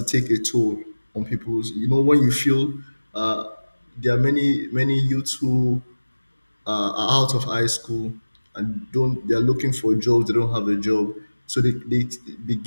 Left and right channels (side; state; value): both; inverted; correlation -1.00